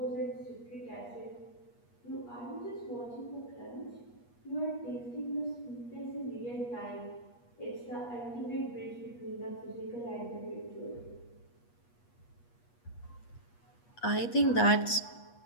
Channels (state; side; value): late; right; 8.3 ms